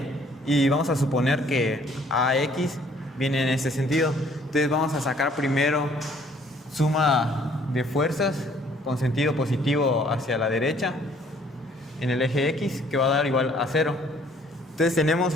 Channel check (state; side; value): normal; both; correlation 0.60